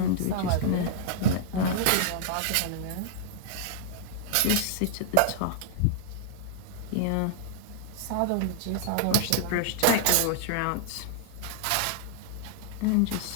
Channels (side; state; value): both; different; correlation -0.01